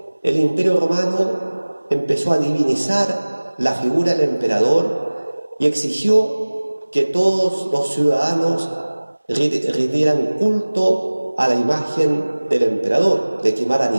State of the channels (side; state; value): both; inverted; correlation -1.00